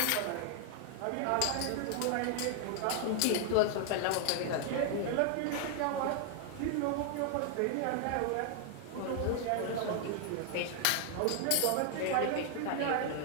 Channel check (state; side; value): different; both; correlation 0.00